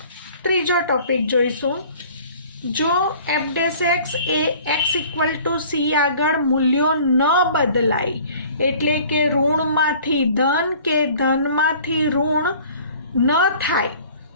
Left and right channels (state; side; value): inverted; both; correlation -0.50